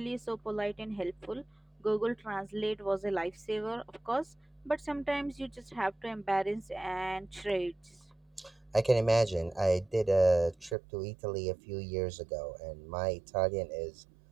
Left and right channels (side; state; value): left; drops out; at 10.8 s